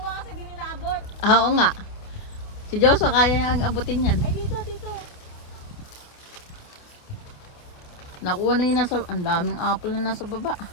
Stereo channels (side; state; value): right; late; 28 ms